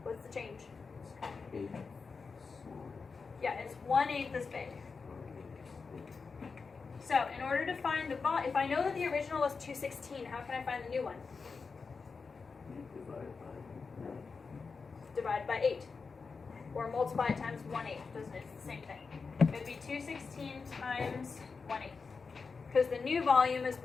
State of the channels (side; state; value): right; quieter; 4.8 dB